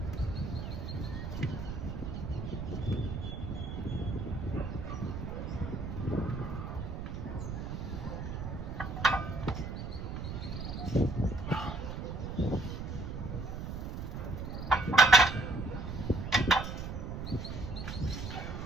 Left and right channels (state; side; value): noise; right; rumble, 5 dB below the sound